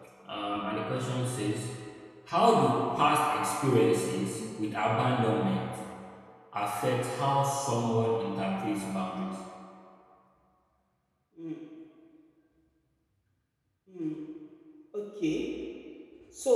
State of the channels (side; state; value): both; identical; correlation 1.00